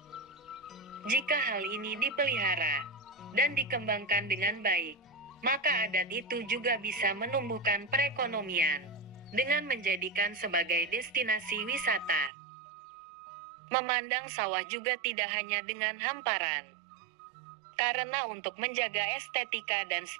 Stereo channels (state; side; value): drops out; left; at 12.3 s